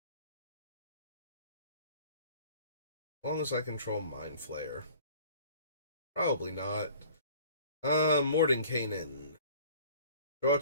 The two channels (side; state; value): both; inverted; correlation -0.49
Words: As long as I control Mind Flayer. Probably not. Mordenkainen. Draw